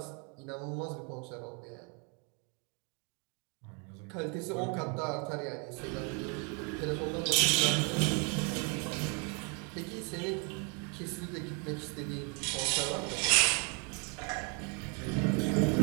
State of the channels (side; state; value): left; quieter; 34.8 dB